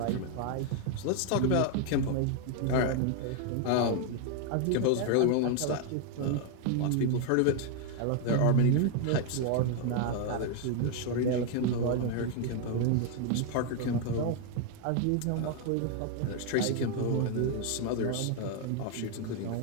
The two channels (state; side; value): different; both; correlation 0.01